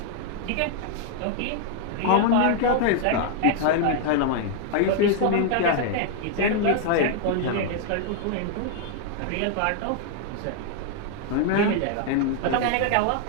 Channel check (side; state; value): both; different; correlation 0.00